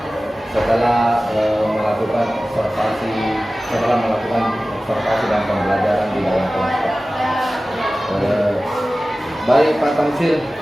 setelah melakukan observasi dan pembelajaran di dalam kelas. Baik Pak Tamsil,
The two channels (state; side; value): normal; both; correlation 0.96